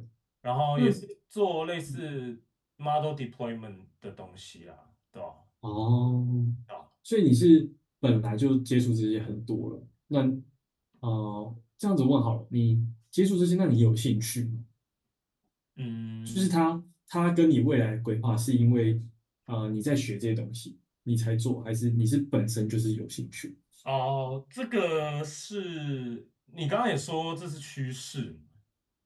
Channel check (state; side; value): identical; both; correlation 1.00